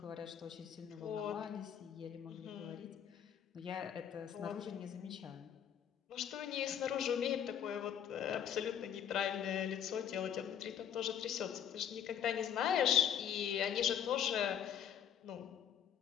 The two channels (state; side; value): quieter; right; 9.1 dB